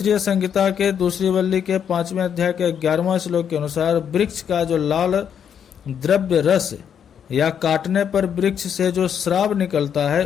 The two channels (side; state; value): right; quieter; 8.2 dB